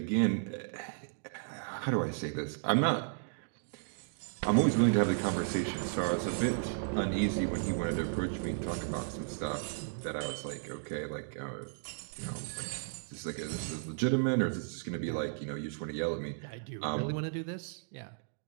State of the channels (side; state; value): left; silent; digital silence